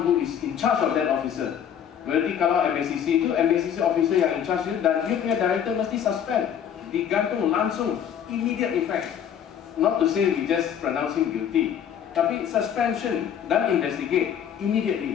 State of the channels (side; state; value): right; quieter; 8.8 dB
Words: who is in charge of that officer. Berarti kalau MACC itu, MACC officer yang in charge itu, dan dia punya director mesti suspend, digantung langsung, immediate effect. Not to say we just pronounce him guilty, tapi suspension dan investigate